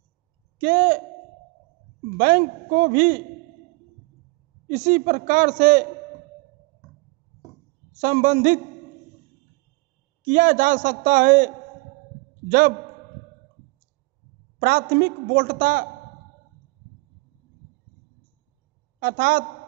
के बैंक को भी इसी प्रकार से संबंधित किया जा सकता है, जब प्राथमिक वोल्टता अर्थात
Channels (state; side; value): quieter; left; 26.1 dB